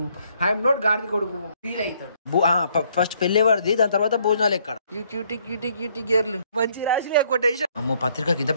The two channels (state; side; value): inverted; both; correlation -0.67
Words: ఐఎమ్ నాట్ గాడిద కొడుకు ఫీల్ అవుతాడు. ఫస్ట్ పెళ్ళేవాడిది, దాని తర్వాత భోజనాలు ఎక్కడ. యూ క్యూటీ క్యూటీ క్యూటీ గేర్లు మంచి రాసి కొటేషన్. అమ్మో పత్రికకి ఇంత